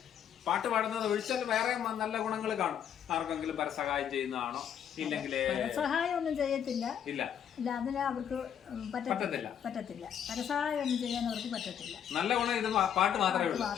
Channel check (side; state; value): right; quieter; 8.9 dB